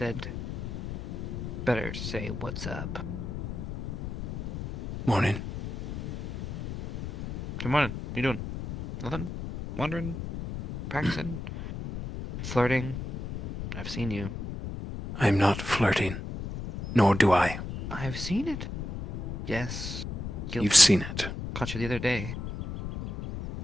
better say what's up. Morning. Good morning. What you doing? Nothing? Wandering? Practicing? Flirting? I've seen you. I'm not flirting. Nor do I. I've seen it. Yes. You've seen it. Caught you the other day.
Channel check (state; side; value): noise; left; rumble, 7 dB below the sound